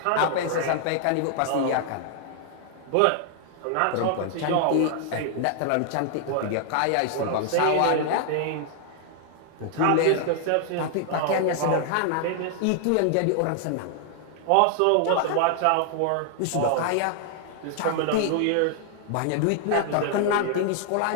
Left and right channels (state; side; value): different; both; correlation 0.00